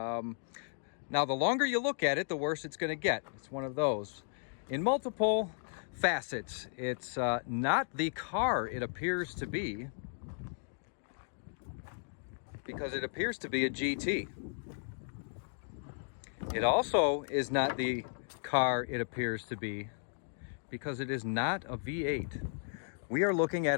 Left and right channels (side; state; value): right; silent; digital silence